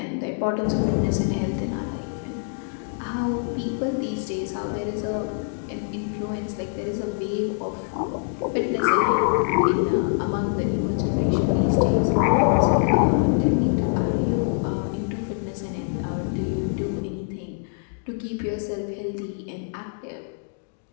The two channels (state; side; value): silent; right; digital silence